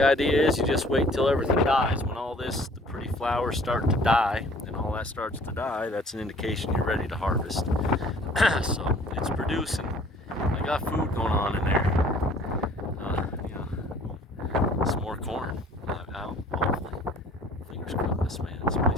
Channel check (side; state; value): both; normal; correlation 0.53